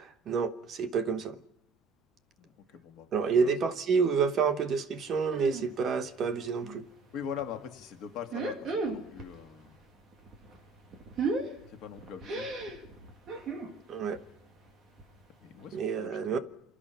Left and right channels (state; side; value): quieter; left; 4.4 dB